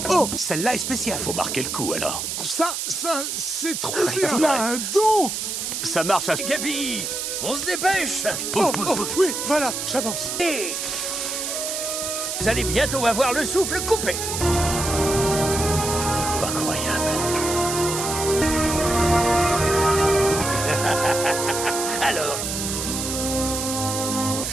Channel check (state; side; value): noise; right; hiss, 3 dB below the sound